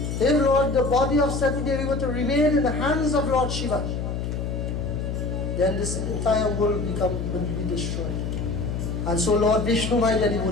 If the body of Sati Devi were to remain in the hands of Lord Shiva, then this entire world will be destroyed. And so Lord Vishnu, my dear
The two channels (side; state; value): left; noise; hum, 3 dB below the sound